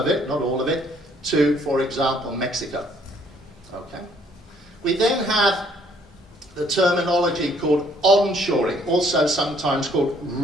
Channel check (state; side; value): normal; both; correlation 0.63